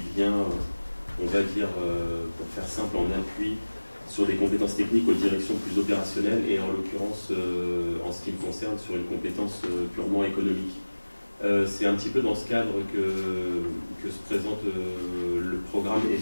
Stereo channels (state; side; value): inverted; both; correlation -1.00